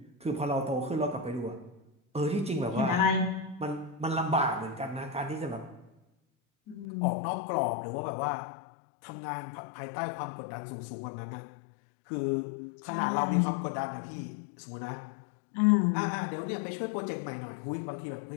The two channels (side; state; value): right; drops out; at 6.9 s